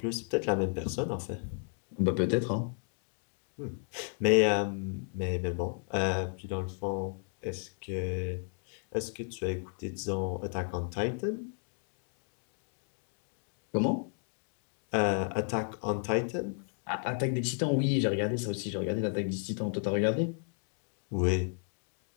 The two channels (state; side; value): silent; right; 56 dB below the other